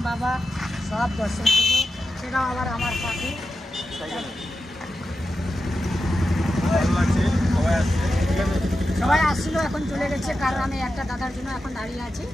बाबा सब दर्शन करबो। সেটাও আমার সাথে সবাই আসছিল, এখন চলে গেছে। কারণ আমি একটা দাদার জন্য এখন দাঁড়িয়ে আছি,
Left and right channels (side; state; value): both; normal; correlation 0.91